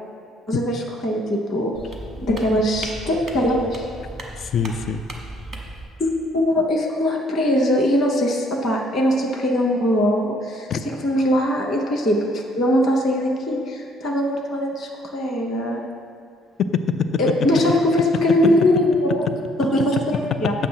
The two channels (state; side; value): normal; both; correlation 0.63